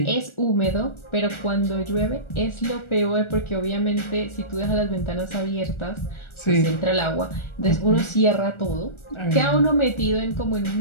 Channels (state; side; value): late; right; 1.4 ms